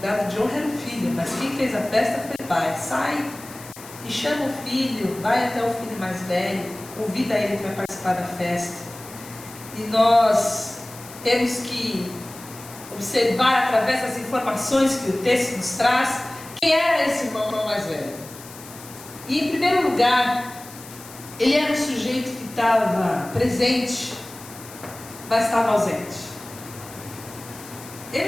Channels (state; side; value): noise; left; hiss, 17 dB below the sound